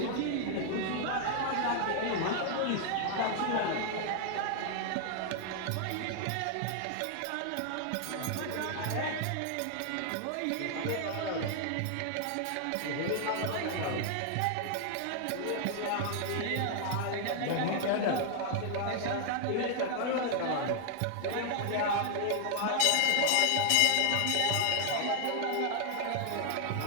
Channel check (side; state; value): both; different; correlation 0.00